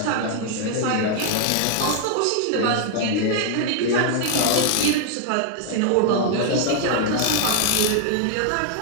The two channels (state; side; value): different; both; correlation 0.00